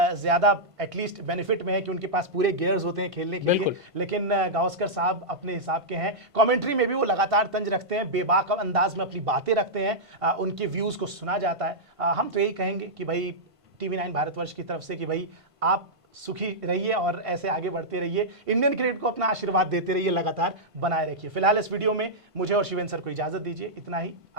ज़्यादा एटलीस्ट बेनिफिट में है कि उनके पास पूरे गियर्स होते हैं खेलने के लिए, लेकिन गावस्कर साहब अपने हिसाब के हैं। कमेंट्री में भी वो लगातार तंज रखते हैं, बेबाक अंदाज में अपनी बातें रखते हैं, उनके व्यूज़ को सुना जाता है। हम तो यही कहेंगे कि भाई TV9 भारतवर्ष की तरफ से कि भाई आप सुखी रहिए और ऐसे आगे बढ़ते रहिए, इंडियन क्रिकेट को अपना आशीर्वाद देते रहिए, लगातार बनाए रखिए। फिलहाल इस वीडियो में मुझे और शिवेंद्र सर को इजाजत दीजिए, इतना ही।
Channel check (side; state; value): left; late; 1.5 ms